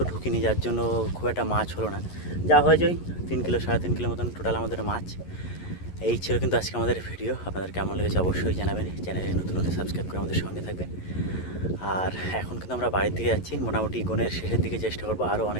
ঢুকিনি, যার জন্য খুব একটা মাছ হলো না। যা হয়েছে ওই 3 কিলো 3.5 কিলো মতন টোটাল আমাদের মাছ। এই ছিল কিন্তু আজকে আমাদের ভিডিও। আপনাদের কেমন লেগেছে অবশ্যই জানাবেন। চ্যানেলে নতুন হলে সাবস্ক্রাইব করে আমাদের সঙ্গে থাকবেন। আর এখন কিন্তু আমরা বাড়ির দিকে যাচ্ছি, মোটামুটি গনের শেষের দিকে চেষ্টা করবো আরও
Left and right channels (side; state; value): right; late; 11 ms